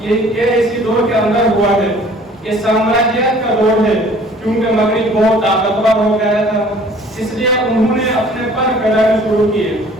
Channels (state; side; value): normal; both; correlation 0.52